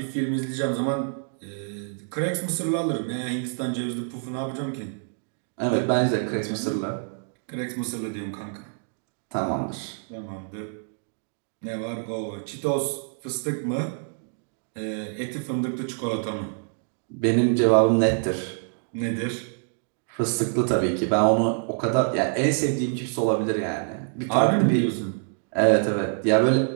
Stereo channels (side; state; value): left; silent; digital silence